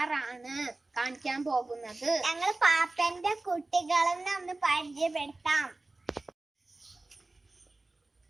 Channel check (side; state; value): left; quieter; 3.1 dB